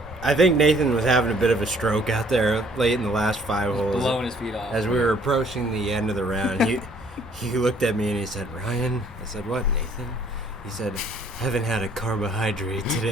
I think Nathan was having a bit of a stroke out there late in the last 5 holes. Blowing his feet off. As we were approaching the end of the round, he looked at me and he said, Ryan? I said, what, Nathan? He said, haven't had a carbohydrate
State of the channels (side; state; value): both; normal; correlation 0.60